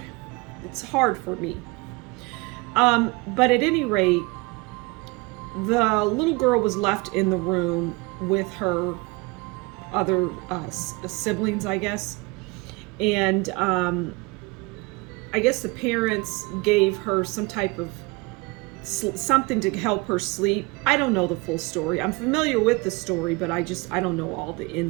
It's hard for me. But at any rate, the little girl was left in the room with her other siblings, I guess. And I guess the parents gave her some type of something to help her sleep. I don't know the full story. I'm familiar with the story, but I don't know all the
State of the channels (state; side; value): quieter; left; 25.7 dB